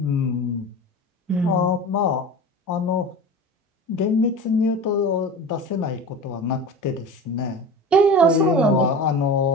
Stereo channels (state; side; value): normal; both; correlation 0.33